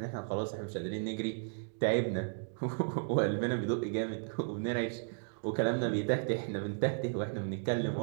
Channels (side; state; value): left; silent; digital silence